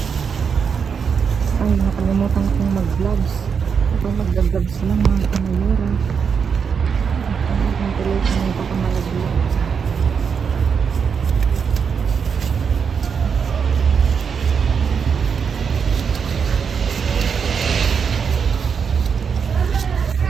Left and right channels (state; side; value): quieter; left; 6.4 dB